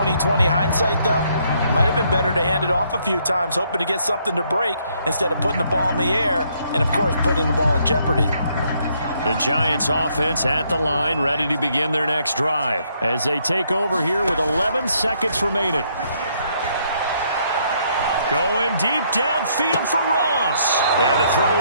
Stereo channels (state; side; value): inverted; both; correlation -0.70